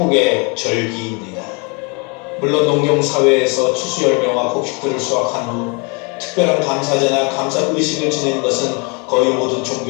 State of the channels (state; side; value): quieter; right; 32.6 dB